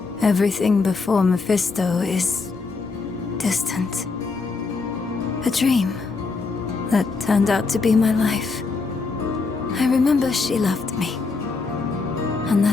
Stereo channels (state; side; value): quieter; right; 4.3 dB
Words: Everything before Mephisto is distant. A dream that turned out to be my life. I remember she loved me. And